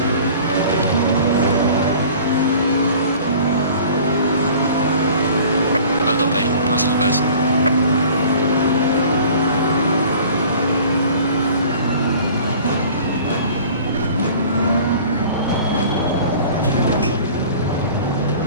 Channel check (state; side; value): inverted; both; correlation -0.46